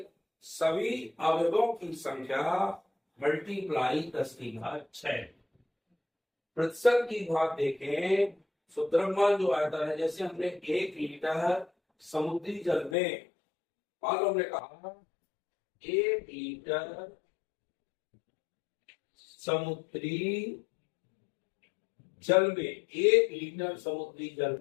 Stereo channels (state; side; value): drops out; right; at 13.0 s